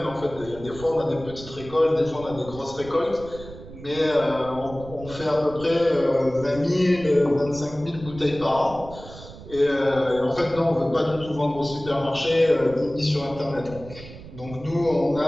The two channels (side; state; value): right; noise; rumble, 15 dB below the sound